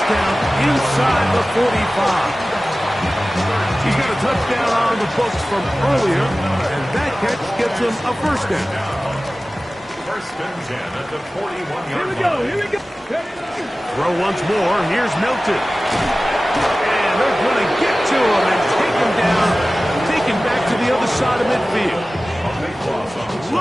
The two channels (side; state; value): both; normal; correlation 0.97